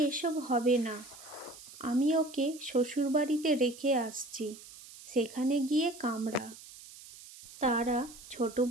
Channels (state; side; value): noise; right; hiss, 18 dB below the sound